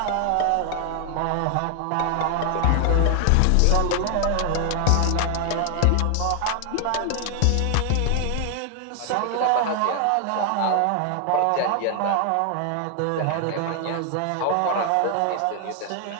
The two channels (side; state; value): both; different; correlation 0.00